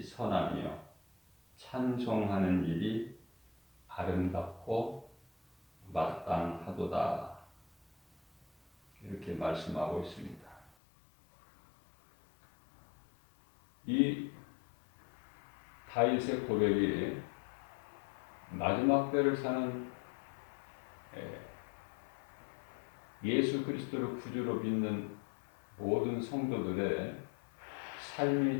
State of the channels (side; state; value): right; drops out; at 10.7 s